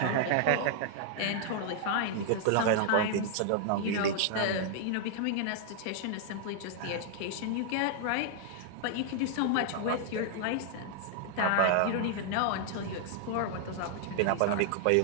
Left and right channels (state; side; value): different; both; correlation -0.01